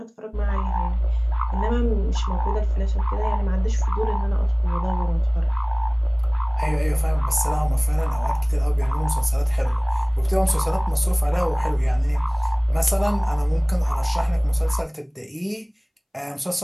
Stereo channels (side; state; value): both; identical; correlation 1.00